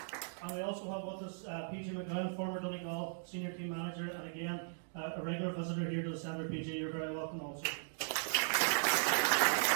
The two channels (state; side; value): silent; left; digital silence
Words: And we also have with us PG McGranaghan, former Donegal Senior Team Manager, and again, a regular visitor here to the centre. PG, you're very welcome also.